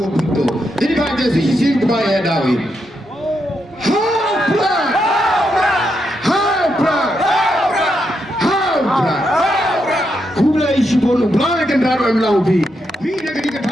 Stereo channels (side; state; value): both; normal; correlation 0.82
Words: pintu. Jadi baca sisi kebaya dawi. Haupra. Kubla isu bolu, belai kan daru emlau bi. Mina ketika